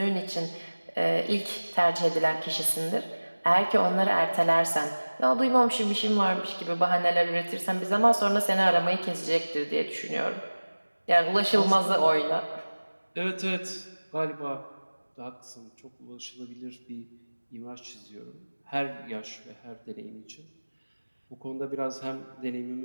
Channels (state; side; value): inverted; both; correlation -1.00